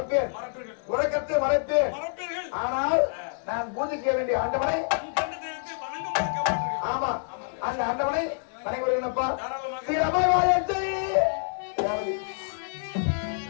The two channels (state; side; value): silent; right; 59 dB below the other